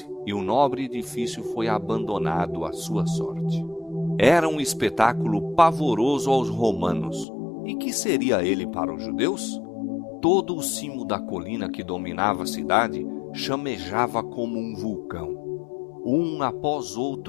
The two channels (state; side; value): drops out; right; at 7.2 s